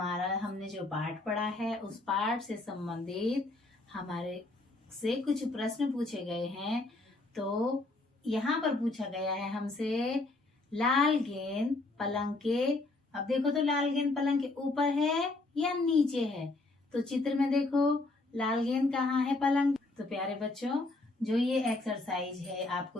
जो पाठ पढ़ा है, उस पाठ से संबंधित हमारे से कुछ प्रश्न पूछे गए हैं। तो यहाँ पर पूछा गया है हमसे, लाल गेंद पलंग के, अब देखो तो लाल गेंद पलंग के ऊपर है या नीचे है। तो चित्र में देखो लाल गेंद कहाँ है, पलंग। तो प्यारे बच्चों, जो ये एक्सरसाइज है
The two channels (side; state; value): right; quieter; 3.1 dB